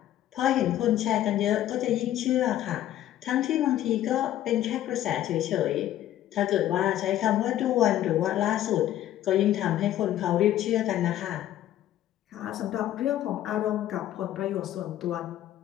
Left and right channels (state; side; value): quieter; right; 12.6 dB